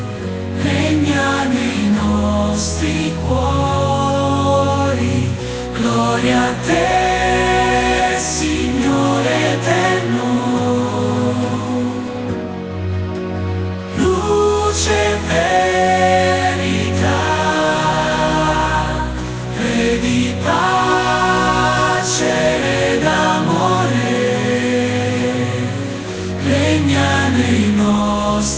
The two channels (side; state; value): both; identical; correlation 1.00